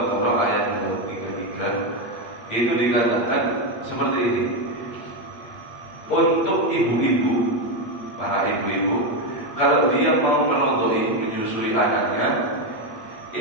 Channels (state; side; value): late; right; 8.7 ms